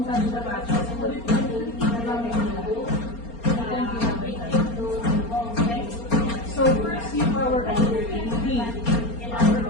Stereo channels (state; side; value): late; right; 4.3 ms